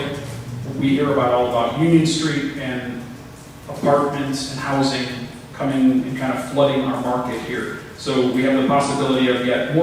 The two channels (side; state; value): both; identical; correlation 1.00